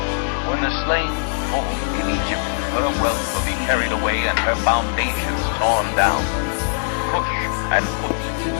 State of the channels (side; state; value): right; silent; digital silence